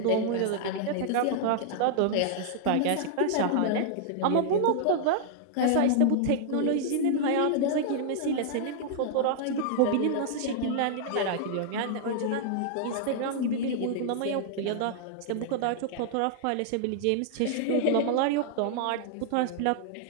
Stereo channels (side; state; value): both; different; correlation -0.01